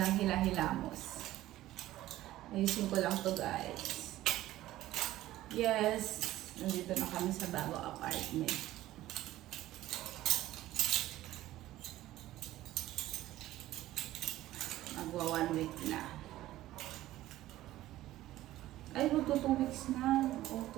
hila-hilamos. Ayusin ko lang to guys. Yes. Nandito na kami sa bago apartment. Magwa 1 week na. Ay, magto 2 weeks na. Oo,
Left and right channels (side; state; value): left; quieter; 15.2 dB